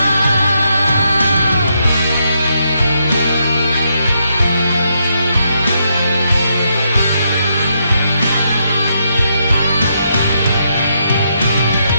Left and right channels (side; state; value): both; inverted; correlation -0.79